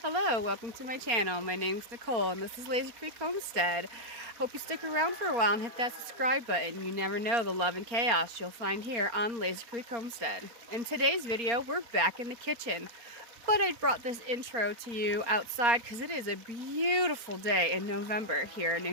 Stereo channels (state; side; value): late; left; 4.3 ms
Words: Hello, welcome to my channel. My name's Nicole and this is Lazy Creek Homestead. Hope you stick around for a while and hit that subscribe button. You never know the love and chaos you'll find here on Lazy Creek Homestead. In today's video, we're back in the kitchen. But I brought this intro to you outside because it is a beautiful day in November here in